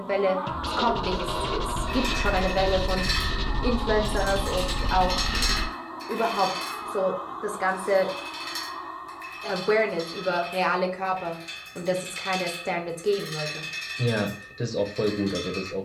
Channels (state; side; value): identical; both; correlation 1.00